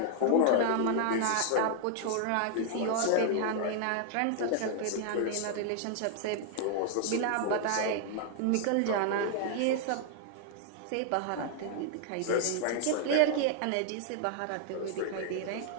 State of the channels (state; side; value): different; both; correlation 0.00